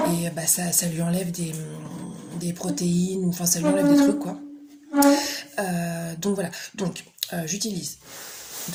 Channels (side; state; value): both; identical; correlation 1.00